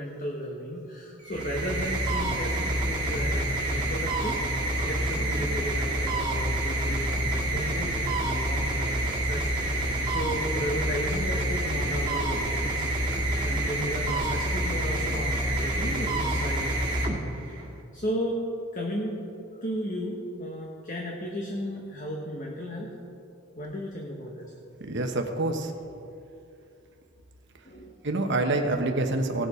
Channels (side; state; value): both; normal; correlation 0.42